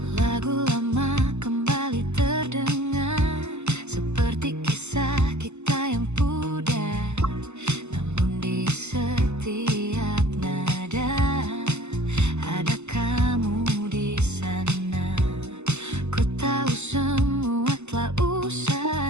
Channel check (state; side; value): late; left; 0.82 ms